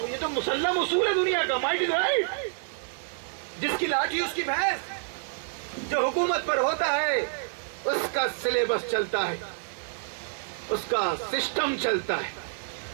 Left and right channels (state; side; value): silent; left; 59 dB below the other